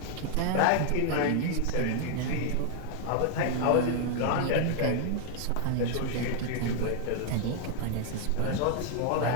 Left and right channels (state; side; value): different; both; correlation 0.00